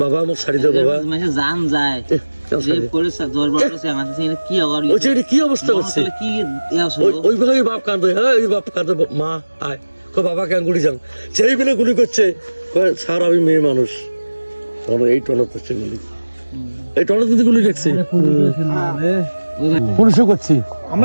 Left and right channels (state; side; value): inverted; both; correlation -1.00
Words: বাবা আমার শাড়ি দাও বাবা মাসে জান যায় রেপ করেছে দরবার করেছে আমাদের সাথে কি আবার ওই চাকরি কি অবস্থা করছে কি ওই ভাবে বাপ কাঁদে হ্যাঁ ওই বাপ কাঁদে মা আয় কো বাবা কেন গুলি যাও সেই বেলে গুলি করছে স্যার আমি মেয়ে মানুষ এই টনত হচ্ছে গুলি এই টনত কিন্তু গুলি দেখছে পুলিশও করছি